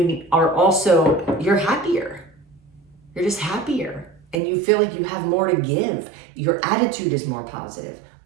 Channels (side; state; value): left; drops out; at 4.4 s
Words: happier. You're just happier. And you feel like you have more to give. Your attitude is more positive.